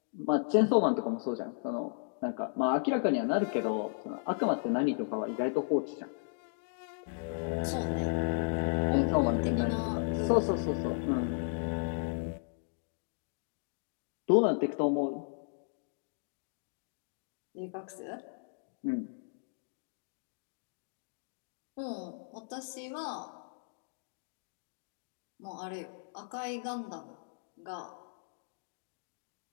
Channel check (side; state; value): right; silent; digital silence